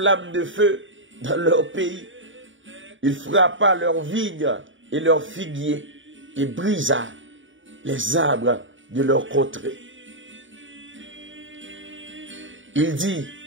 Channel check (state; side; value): late; left; 0.56 ms